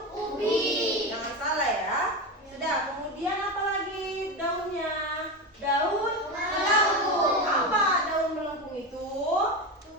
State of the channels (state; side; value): normal; both; correlation 0.19